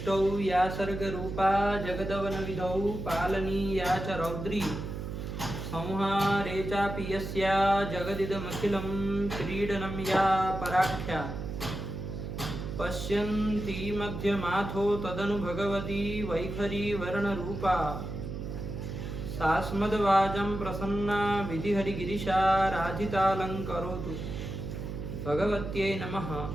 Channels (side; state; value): right; noise; hum, 6 dB below the sound